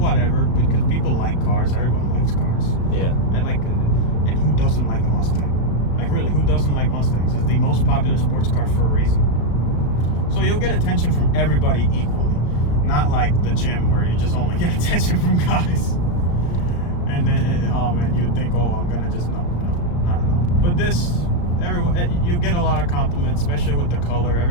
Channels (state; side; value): late; right; 34 ms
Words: because people like cars. Everyone likes cars. Yeah. And who doesn't like a Mustang? Really, who doesn't like Mustangs? It's the most popular sports car for a reason. So you'll get attention from everybody equally, not like the gym where you just only get attention from guys. And then, you'd think, oh, I'm gonna just no, not at all. But this, you get a lot of compliments, especially with the color.